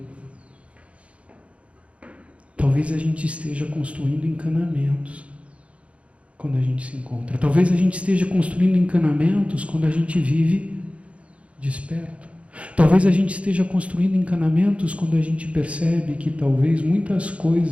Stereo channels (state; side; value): late; left; 0.063 ms